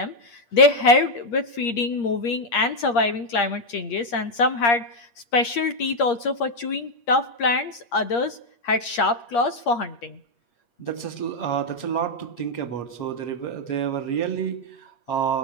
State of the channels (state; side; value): late; right; 8.5 ms